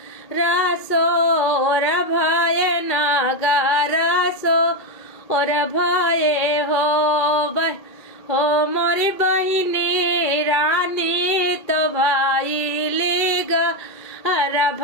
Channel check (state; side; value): late; right; 2.3 ms